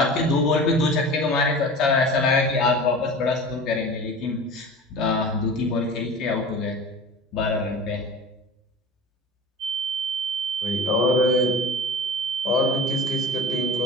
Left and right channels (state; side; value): normal; both; correlation 0.36